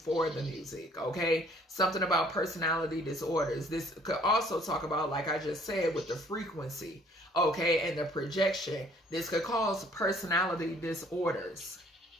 the music. Okay, something about personality disorders. This could also talk about, like I just said, with the frequency, okay, and the projection. This could cause personality disorders.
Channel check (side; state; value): both; normal; correlation 0.59